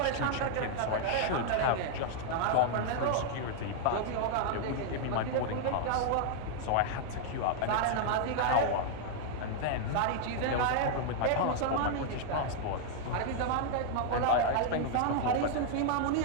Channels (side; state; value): both; different; correlation 0.00